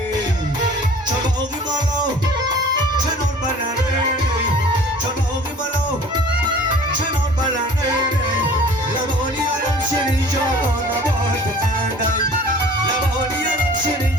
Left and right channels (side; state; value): both; normal; correlation 0.47